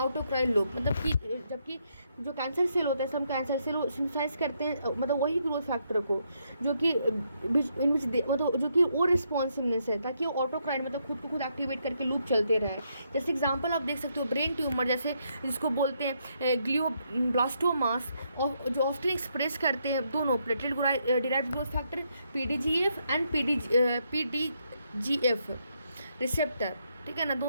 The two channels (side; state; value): both; inverted; correlation -0.76